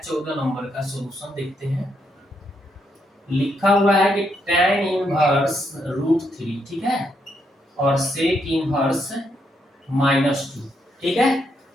नंबर का सॉल्यूशन, देखते हैं। लिखा हुआ है कि tan इनवर्स √3, ठीक है, और sec इनवर्स -2, ठीक है।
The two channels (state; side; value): normal; both; correlation 0.77